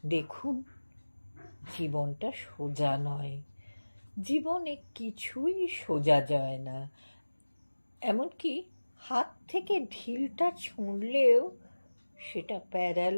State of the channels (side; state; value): both; inverted; correlation -1.00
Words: দেখুন, জীবনটা সোজা নয়, জীবনে কিছুই সোজা যায় না। এমনকি হাত থেকে ঢিলটা ছুঁড়লেও সেটা